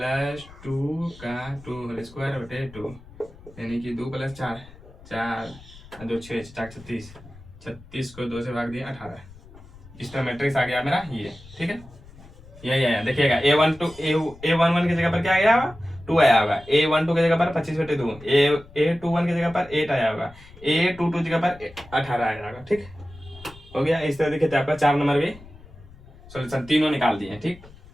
2 का 2 होल स्क्वायर बटे 2, यानी कि 2 प्लस 4 4 2 6 4 36 36 को 2 से भाग दिया 18, इस तरह मैट्रिक्स आ गया मेरा ये, ठीक है, यही आया, देखिएगा A11 की जगह पर क्या आया होगा 2 आया होगा, A12 की जगह पर 25 बटे 2, A21 की जगह पर 8 आया होगा, A22 की जगह पर 18 आया होगा, ठीक हो गया। इस तरह देखिए आपका 4 नंबर भी सॉल्यूशन तीनों निकाल दिए, ठीक।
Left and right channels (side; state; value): left; noise; rumble, 21 dB below the sound